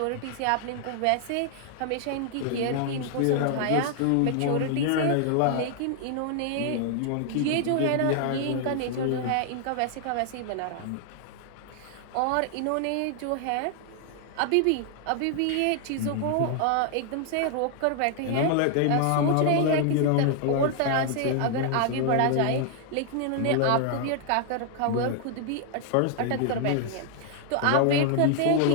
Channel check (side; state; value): both; different; correlation 0.00